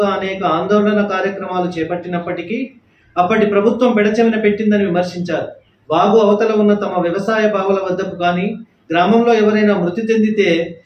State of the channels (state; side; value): identical; both; correlation 1.00